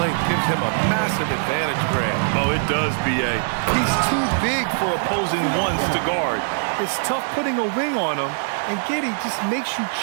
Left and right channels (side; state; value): left; silent; 64 dB below the other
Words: gives him a massive advantage, Grant. Oh, it does, B.A. He's too big for opposing ones to guard. It's tough putting a wing on him, and Giddey just makes you